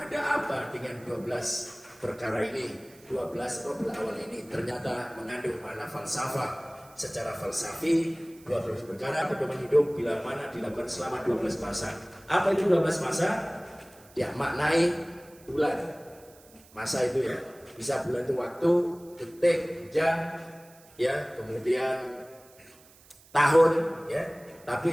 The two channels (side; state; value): right; noise; hiss, 25 dB below the sound